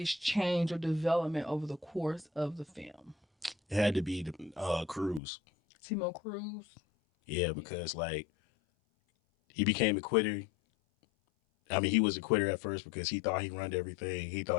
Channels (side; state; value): right; drops out; at 5.2 s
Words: change or development over the course of the film? It had to be the Cruz. Timo Cruz. Yeah, Yeah. because like he became a quitter. I mean, he was a quitter at first because he thought he run everything. He